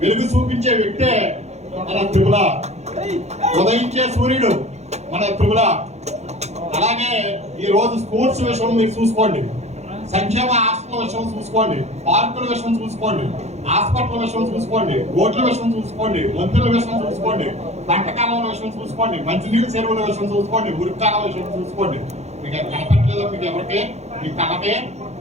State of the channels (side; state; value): left; late; 0.32 ms